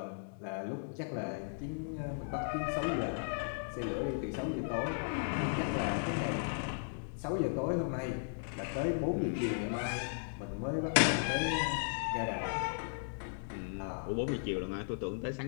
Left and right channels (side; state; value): right; silent; digital silence